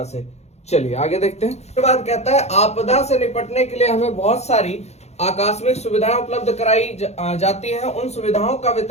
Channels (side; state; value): right; late; 0.32 ms